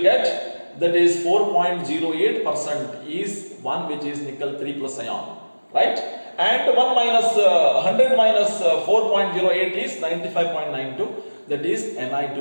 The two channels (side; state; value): both; inverted; correlation -1.00